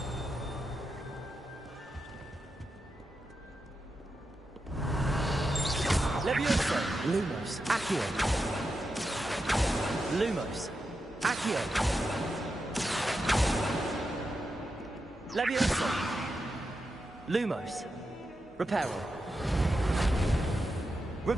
Levioso. Lumos. Accio. Lumos. Accio. Levioso. Lumos. Reparo.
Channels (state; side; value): normal; both; correlation 0.88